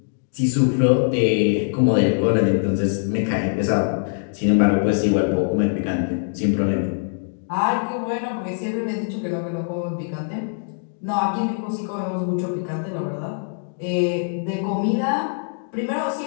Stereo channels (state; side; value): silent; right; digital silence